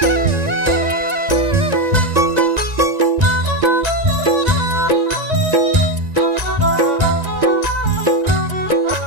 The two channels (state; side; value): late; left; 1.9 ms